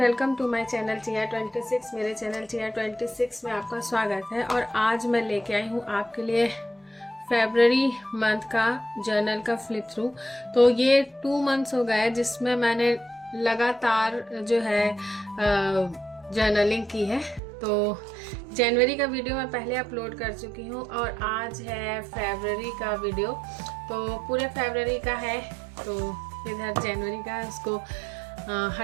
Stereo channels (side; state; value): left; drops out; at 17.4 s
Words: to my channel TR26। मेरे चैनल TR26 में आपका स्वागत है। और आज मैं लेके आई हूँ आपके लिए फेब्रवरी मंथ का जर्नल का फ्लिप थ्रू। तो ये 2 मंथ्स हो गए जिसमें मैंने लगातार जो है जर्नलिंग की है। तो जनवरी का वीडियो मैं पहले अपलोड कर चुकी हूँ और आज है फेब्रवरी का वीडियो। तो पूरे फेब्रवरी का है, तो इधर जनवरी का है, उसको